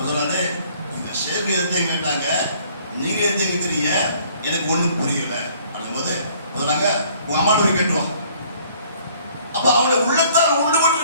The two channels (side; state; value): both; inverted; correlation -0.58